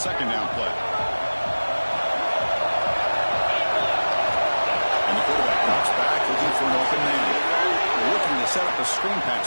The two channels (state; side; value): inverted; both; correlation -1.00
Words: down play. And the quarterback drops back, looking for an open man. Looking to set up a screen pass